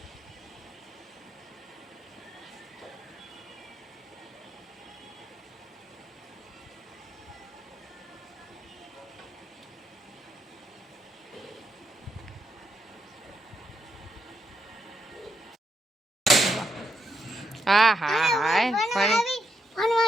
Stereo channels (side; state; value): both; normal; correlation 0.81